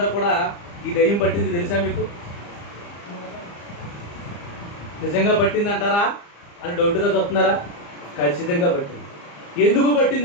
కూడా ఈ దయ్యం పట్టింది తెలుసా మీకు? నిజంగా పట్టింది అంటారా అని డౌట్గా చూస్తున్నారా? ఖచ్చితంగా పట్టింది. ఎందుకు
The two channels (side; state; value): right; late; 35 ms